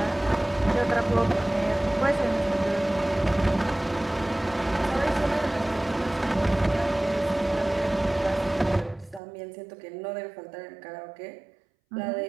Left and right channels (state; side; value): drops out; left; at 9.2 s